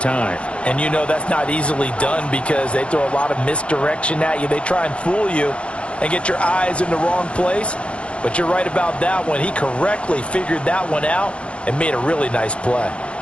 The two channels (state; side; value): late; right; 0.060 ms